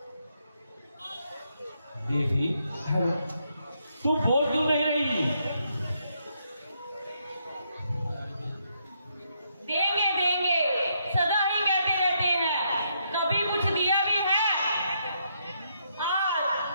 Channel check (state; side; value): inverted; both; correlation -0.76